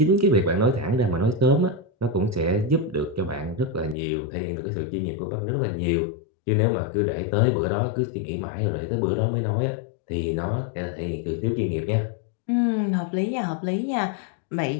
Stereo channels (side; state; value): right; drops out; at 4.0 s